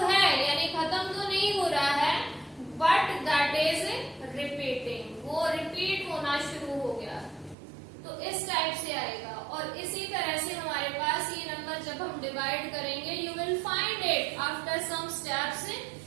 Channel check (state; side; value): drops out; left; at 7.6 s